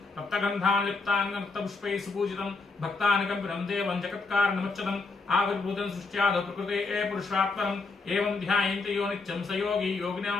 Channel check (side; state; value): right; quieter; 3.9 dB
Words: రక్తగంధాన్ లిప్తాంగం రక్తపుష్పై సుపూజితం భక్తానికంపినం దేవం జగత్కారణముచ్చతం ఆవిర్భూతం సృష్ట్యాద ప్రకృతే ఏ పురుషాత్మనం ఏవం ధ్యాయంతి యో నిత్యం స యోగి